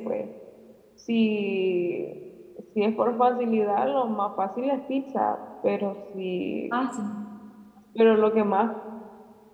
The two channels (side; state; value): both; identical; correlation 1.00